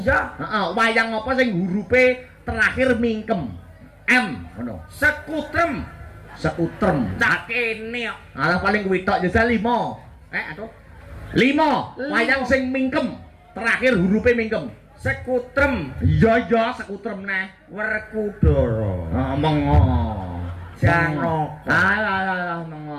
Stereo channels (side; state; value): both; identical; correlation 1.00